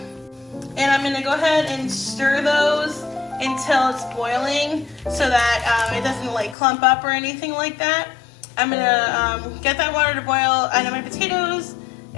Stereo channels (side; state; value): right; drops out; at 6.6 s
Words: and I'm gonna go ahead and stir those until it's boiling, so that it doesn't like clump up or anything like that. I'm gonna get that water to boil, add in my potatoes,